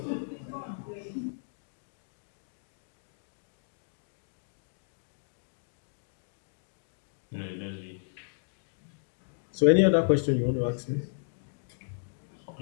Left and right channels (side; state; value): right; silent; digital silence